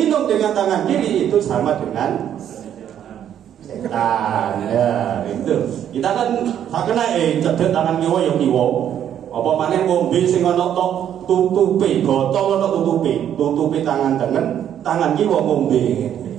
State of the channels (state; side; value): quieter; left; 9.9 dB